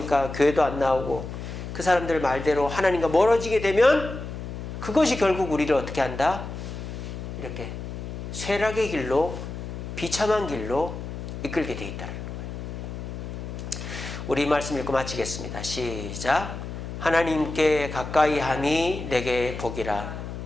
교회도 안 나오고 그 사람들 말대로 하나님과 멀어지게 되면 그것이 결국 우리를 어떻게 한다? 이렇게 쇠락의 길로, 비참한 길로 이끌게 돼 있다는 거예요. 우리 말씀 읽고 마치겠습니다. 시작. 하나님께 가까이 함이 내게 복이라.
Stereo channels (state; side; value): noise; left; hum, 8 dB below the sound